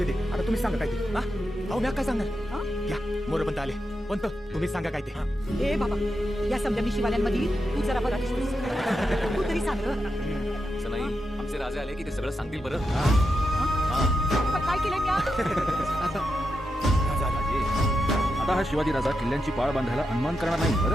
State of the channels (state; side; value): normal; both; correlation 0.87